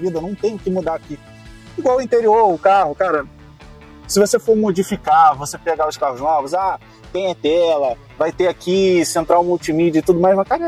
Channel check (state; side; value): identical; both; correlation 1.00